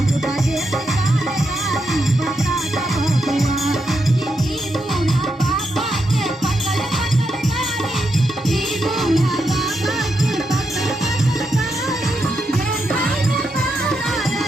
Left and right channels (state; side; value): normal; both; correlation 0.83